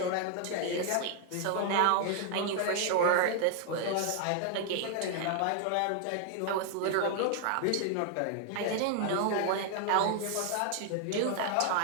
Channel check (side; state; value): both; different; correlation 0.00